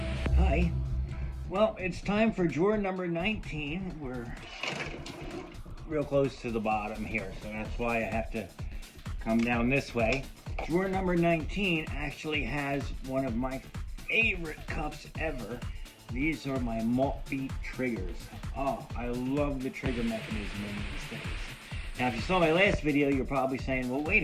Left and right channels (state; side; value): identical; both; correlation 1.00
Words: Well, it's time for drawer number 19. We're real close to the bottom here, so that's why I have to come down this way. Drawer number 19 actually has one of my favorite cups ever. These are my Maltby triggers. Oh, I love the trigger mechanism in these things. Now, if you saw my last video, you're probably saying, well, wait